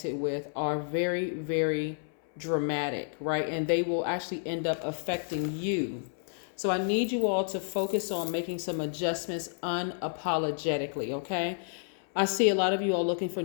with are very dramatic, right? And they will actually end up affecting you. So I need you all to focus on making some adjustments unapologetically, okay? I see a lot of you all looking for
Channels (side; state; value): right; silent; 58 dB below the other